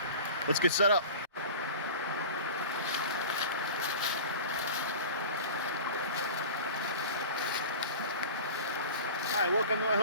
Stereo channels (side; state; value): both; inverted; correlation -0.37